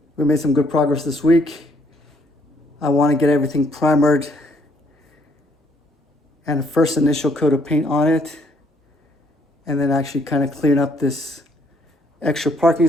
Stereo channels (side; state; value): both; normal; correlation 0.67